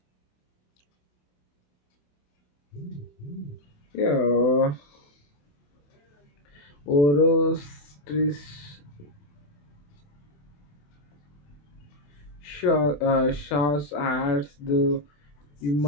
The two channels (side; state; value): right; late; 27 ms